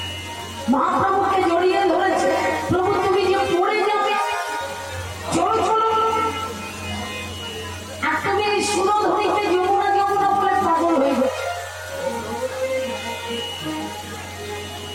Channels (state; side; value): identical; both; correlation 1.00